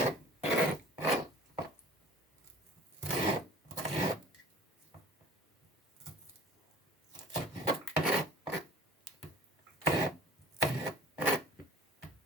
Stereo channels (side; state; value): both; normal; correlation 0.46